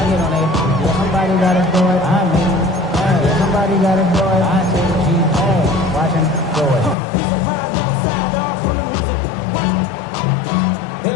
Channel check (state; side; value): drops out; right; at 7.0 s